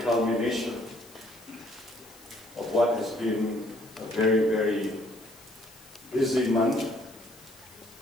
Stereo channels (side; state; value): left; noise; hiss, 23 dB below the sound